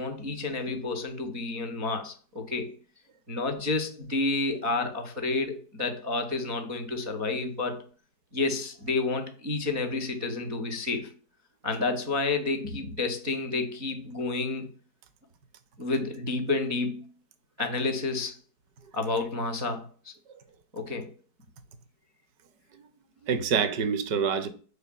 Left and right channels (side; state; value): left; late; 4.6 ms